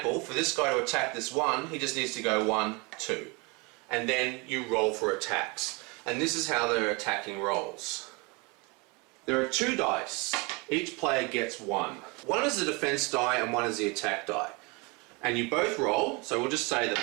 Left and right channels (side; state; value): left; quieter; 28.6 dB